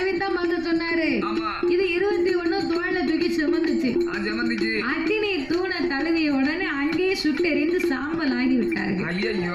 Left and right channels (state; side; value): noise; right; rumble, 18 dB below the sound